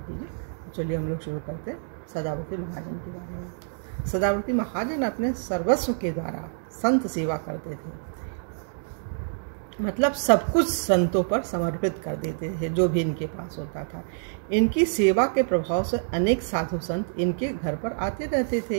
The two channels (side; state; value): left; silent; digital silence